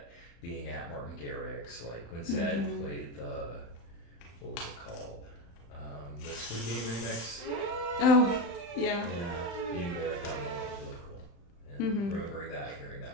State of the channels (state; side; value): late; right; 35 ms